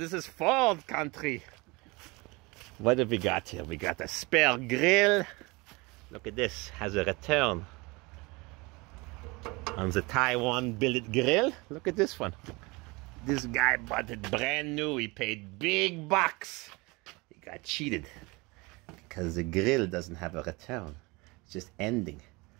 is Ford country. What have we got here? We got a spare grill. Look at this, has a return on the Taiwan billet grill. Look at this one. This guy bought it brand new. He paid big bucks. He got cheated because the grill doesn't have a return. It's just ending.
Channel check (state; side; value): quieter; left; 25.3 dB